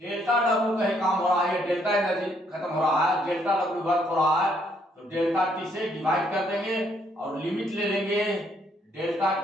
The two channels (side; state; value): both; normal; correlation 0.70